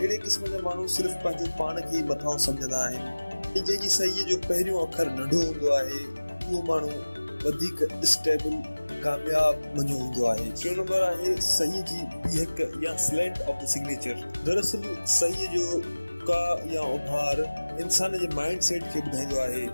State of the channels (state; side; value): inverted; both; correlation -1.00